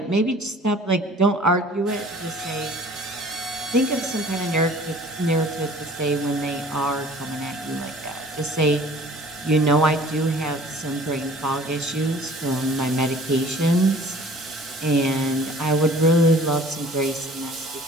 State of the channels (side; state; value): both; normal; correlation 0.49